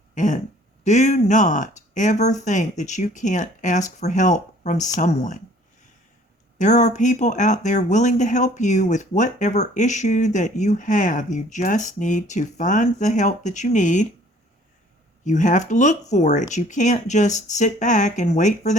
And do not ever think that you can't ask for help from someone. There are people out there willing to help you with whatever issue that you have. You just need to find the help that you need. You have to look for it. You can't just sit back and wait for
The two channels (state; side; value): normal; both; correlation 0.55